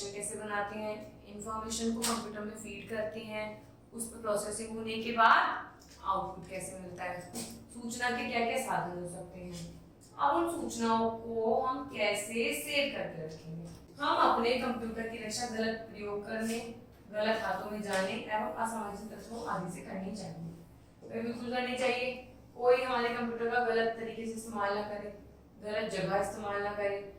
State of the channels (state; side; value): identical; both; correlation 1.00